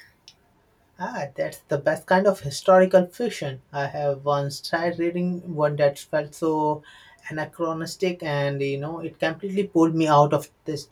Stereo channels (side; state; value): both; identical; correlation 1.00